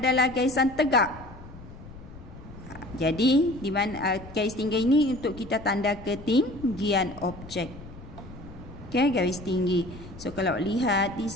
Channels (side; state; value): left; noise; rumble, 16 dB below the sound